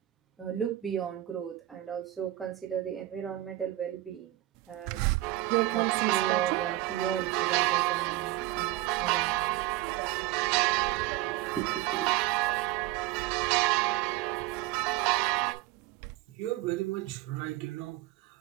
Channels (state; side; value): quieter; left; 16.2 dB